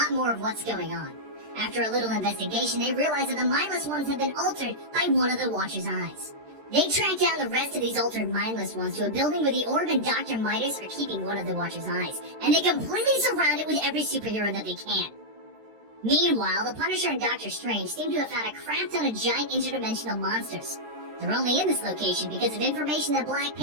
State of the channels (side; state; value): left; late; 13 ms